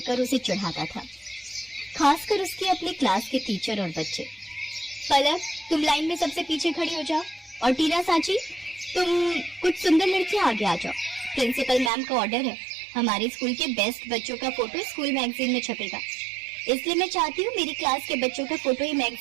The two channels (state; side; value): drops out; left; at 11.9 s